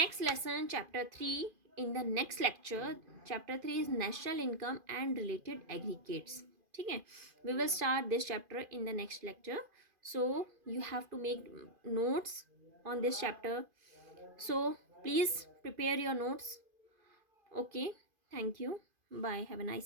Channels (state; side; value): late; left; 2.5 ms